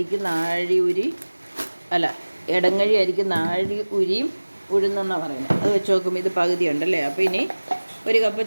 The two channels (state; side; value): inverted; both; correlation -1.00